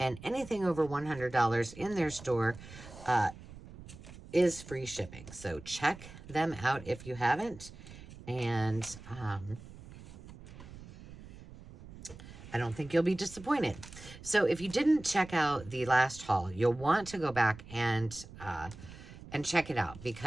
anything over $100 in their store is free shipping. So check them out if you haven't. And I don't think you'll be disappointed. So if you didn't check out the last haul, you'll want to go back and check it out,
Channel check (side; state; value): right; noise; rumble, 16 dB below the sound